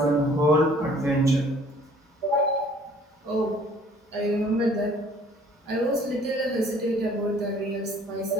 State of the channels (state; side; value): normal; both; correlation 0.56